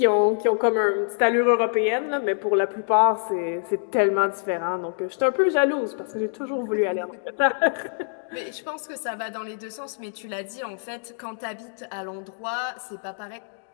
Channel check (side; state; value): right; silent; digital silence